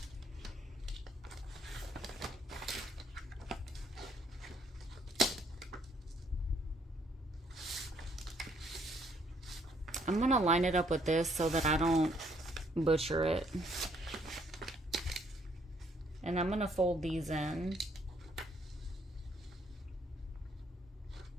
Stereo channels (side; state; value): both; normal; correlation 0.67